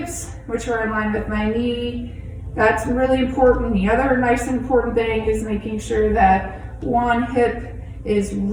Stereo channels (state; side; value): identical; both; correlation 1.00